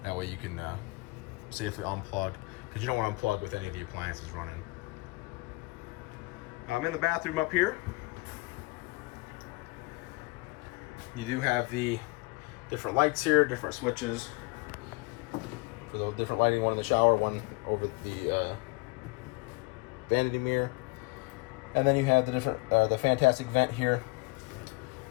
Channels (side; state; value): right; quieter; 25.0 dB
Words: That way you can safely unplug, because you don't want to unplug with any of the appliances running. In the bathroom up here, you do have the different lights here, different switches for the different lighting. One in the shower, one over the vanity mirror, and then you have the different the fantastic vent here